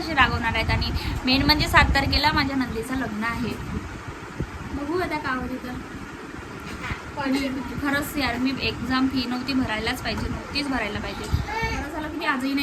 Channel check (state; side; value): identical; both; correlation 1.00